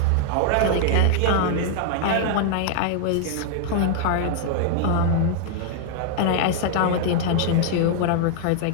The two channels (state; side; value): different; both; correlation -0.01